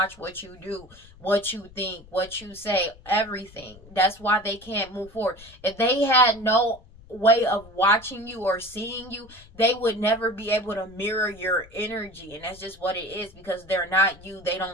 what you do, what you think, what you say, everything. That's why they can't move forward. If they had no way of watching you or seeing you, they would never be able to mirror your energy. And that's just what it is, because they're not you. They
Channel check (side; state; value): left; noise; rumble, 22 dB below the sound